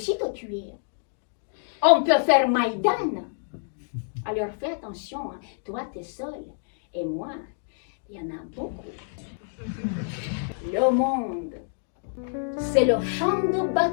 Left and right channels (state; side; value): silent; right; digital silence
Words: te tuer. On peut faire Maïdan. Alors fais attention, hein. Toi t'es seul, et moi, il y en a beaucoup. Le monde, c'est le champ de